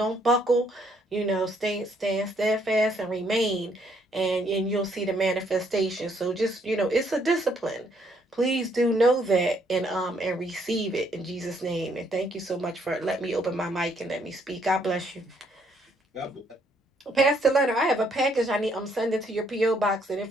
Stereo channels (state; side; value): normal; both; correlation 0.69